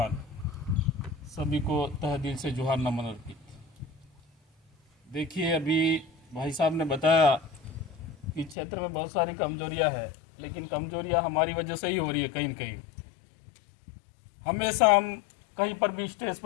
सभी को तहे दिल से जोहार नमन अर्पित। देखिए, अभी भाई साहब ने बताया कि क्षेत्र में बहुत सारी कमजोरियां हैं, लेकिन कमजोरियां हमारी वजह से ही हो रही है। कहीं न कहीं हमेशा हम कहीं पर भी स्टेज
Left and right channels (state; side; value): drops out; right; at 8.6 s